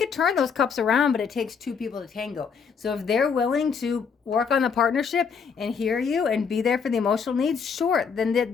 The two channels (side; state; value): right; quieter; 6.1 dB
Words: turn those cups around, but it takes 2 people to tango. So if they're willing to work on the partnership and hear you and be there for the emotional needs, sure, then